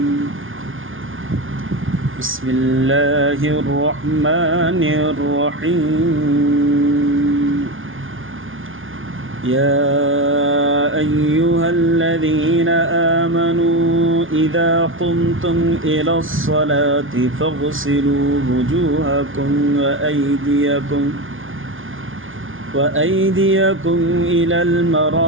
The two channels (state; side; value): late; left; 0.58 ms